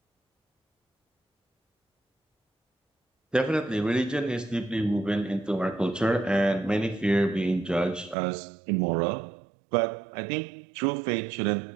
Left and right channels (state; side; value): drops out; left; at 8.2 s